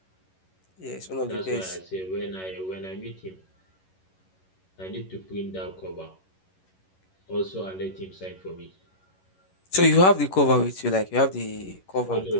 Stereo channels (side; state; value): right; late; 11 ms